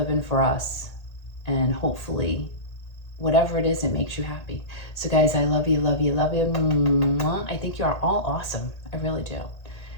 for us. And hopefully, whatever it is, it makes you happy. So guys, I love you, love you, love you. I think you are all awesome. I really do.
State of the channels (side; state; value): right; late; 1.8 ms